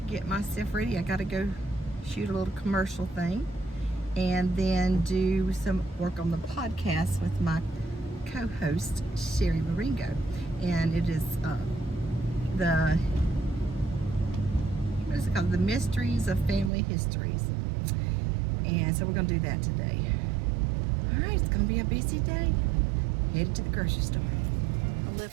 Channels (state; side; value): drops out; left; at 16.7 s